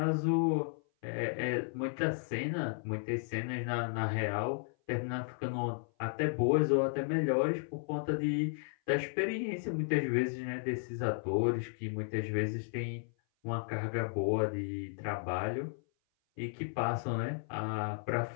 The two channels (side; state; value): right; silent; 55 dB below the other